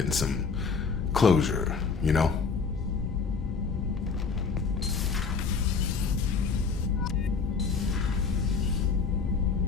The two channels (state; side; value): quieter; right; 5.2 dB